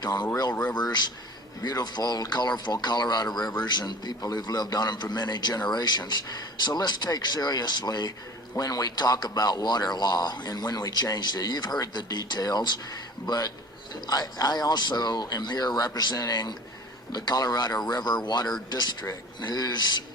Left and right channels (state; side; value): normal; both; correlation 0.43